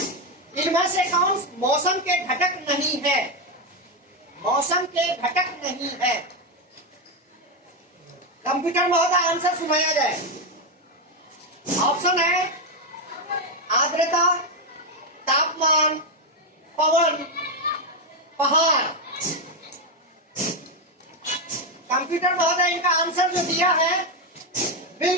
इनमें से कौन मौसम के घटक नहीं है? मौसम के घटक नहीं है। कंप्यूटर महोदय, आंसर सुनाया जाए। ऑप्शन है आर्द्रता, तापमान, पवन, पहाड़। कंप्यूटर महोदय, इनका आंसर जो दिया है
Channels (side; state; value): both; normal; correlation 0.06